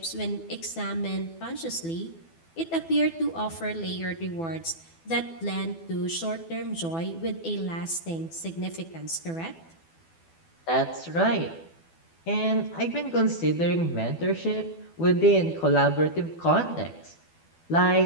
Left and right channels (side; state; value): right; late; 12 ms